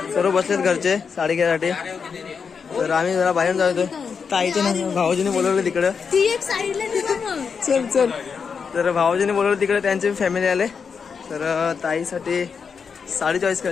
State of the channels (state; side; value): quieter; right; 6.0 dB